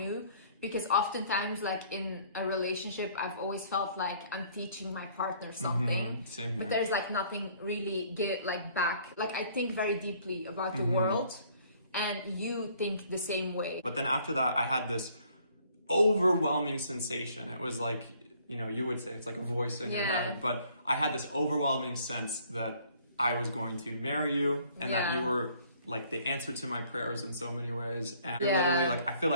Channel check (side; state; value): both; inverted; correlation -0.60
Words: Because oftentimes, like, in a relationship, I've always felt like I'm teaching my partner something. Same here. But there's like nothing really back. Like, I think very deeply about the world, and you think the same way. But then after that, I had this overwhelming sensation. It was like, you would say it's like a voice in your head. But I had this overwhelming sense that I was going to marry you, and that you were like the answer to my prayers in so many ways. And you're literally like, I feel